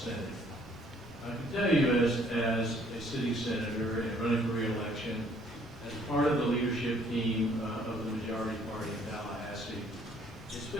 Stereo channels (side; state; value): both; normal; correlation 0.62